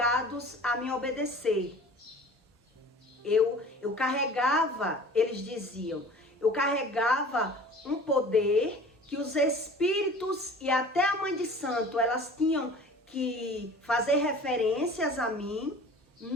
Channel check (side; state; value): both; normal; correlation 0.44